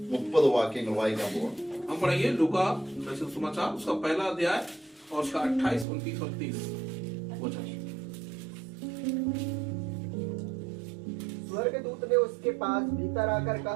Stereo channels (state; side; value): drops out; left; at 5.9 s